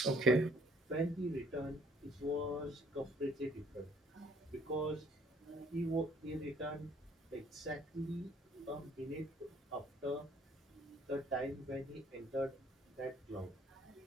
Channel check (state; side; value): normal; both; correlation 0.61